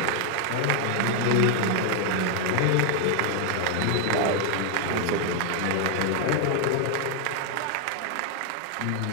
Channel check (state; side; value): different; both; correlation 0.00